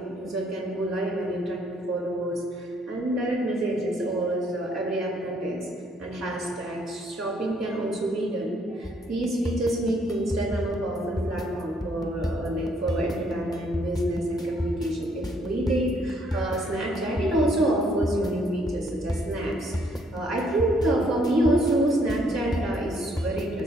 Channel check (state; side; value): normal; both; correlation 0.67